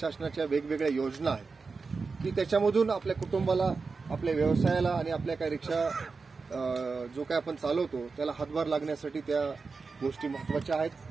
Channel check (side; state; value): left; quieter; 4.5 dB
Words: वेगवेगळ्या योजना आहेत की त्याच्यामधून आपल्या कुटुंबाला आपल्या व्यवसायाला आणि आपल्या काही रिक्षा जो काय आपण चालवतो त्याला हातभार लागण्यासाठी त्या गोष्टी महत्त्वाच्या आहेत.